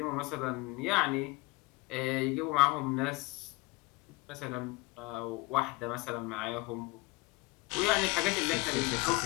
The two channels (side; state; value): right; quieter; 23.0 dB